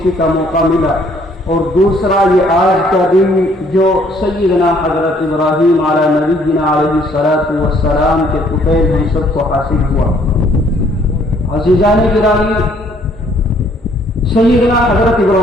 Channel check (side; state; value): both; normal; correlation 0.63